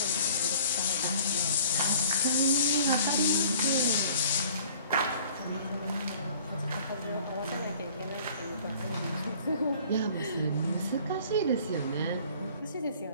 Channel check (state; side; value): inverted; both; correlation -0.51